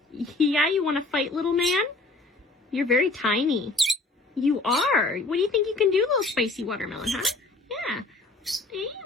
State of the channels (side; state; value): right; quieter; 3.1 dB